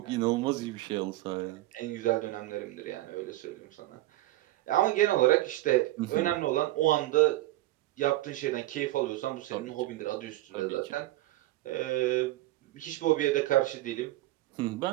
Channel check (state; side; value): quieter; left; 17.1 dB